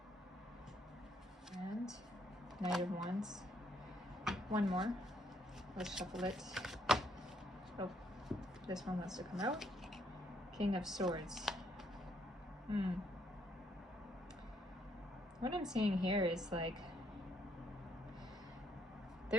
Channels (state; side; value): normal; both; correlation 0.71